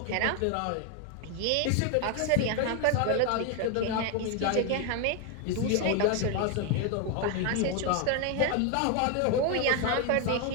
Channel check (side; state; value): both; different; correlation 0.01